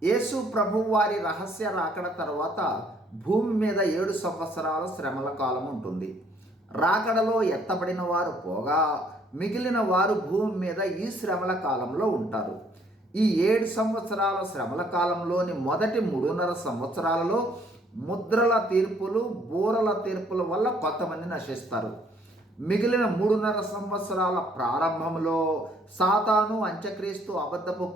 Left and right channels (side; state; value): both; normal; correlation 0.64